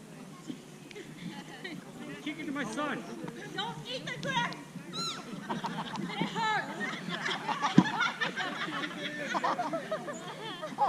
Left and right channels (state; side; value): identical; both; correlation 1.00